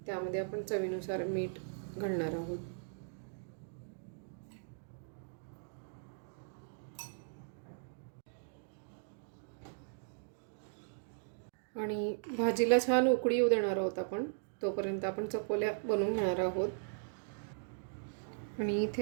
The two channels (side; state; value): left; silent; digital silence